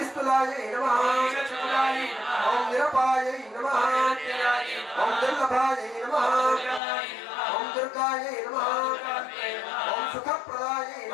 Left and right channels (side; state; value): right; drops out; at 6.8 s